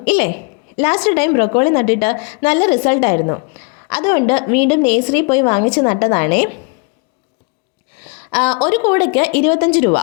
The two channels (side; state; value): right; quieter; 33.0 dB